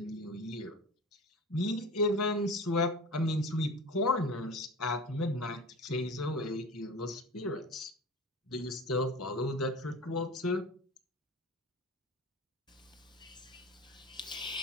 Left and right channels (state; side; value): normal; both; correlation 0.34